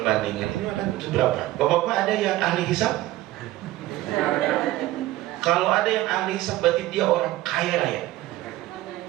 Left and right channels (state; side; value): quieter; left; 16.3 dB